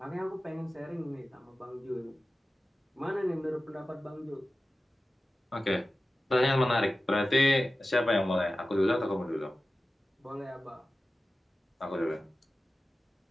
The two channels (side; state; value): both; normal; correlation 0.95